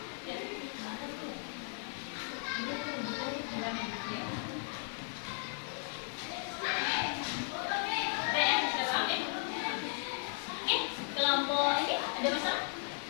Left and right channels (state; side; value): silent; right; 54 dB below the other